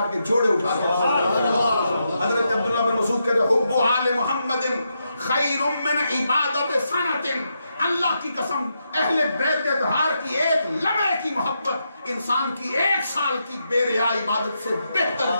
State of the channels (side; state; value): both; inverted; correlation -0.83